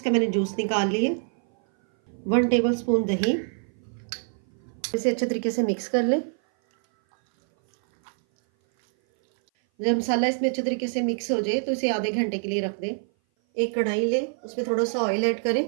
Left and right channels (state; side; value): silent; left; 58 dB below the other